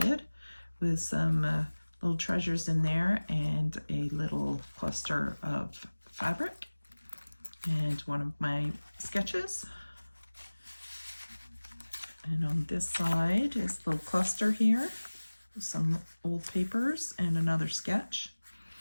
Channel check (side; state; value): both; inverted; correlation -1.00